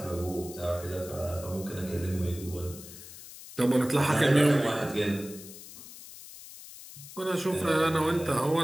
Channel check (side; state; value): left; noise; hiss, 15 dB below the sound